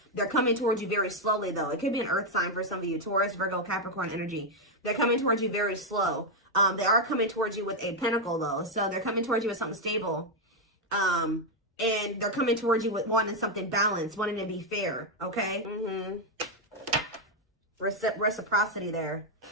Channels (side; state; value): both; normal; correlation 0.02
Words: They're coming towards you very slowly though. It could be an earth sign for some of you. Taurus, Virgo, Capricorn energy. They're coming towards you very slow. They are coming towards you with a pentacle though. So they're coming towards you with something stable. And they're coming towards you with wanting something balanced, wanting to be fair, okay? Reciprocity there.